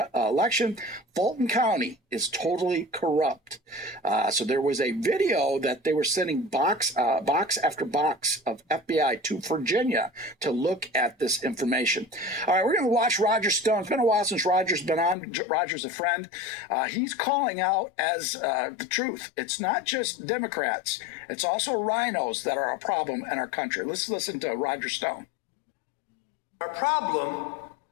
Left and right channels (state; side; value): drops out; right; at 15.2 s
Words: election, Fulton County is totally corrupt. So there was a video that they were sending box after box of FBI to Virginia to look at this information. All right, we're going to watch Roger Stone. It's been a while since Roger's been on. Roger's a friend. He's calling out as the truth. It's not just Democrats. It's also rhinos that are a problem in our country. Let's listen to Roger Stone. Our problem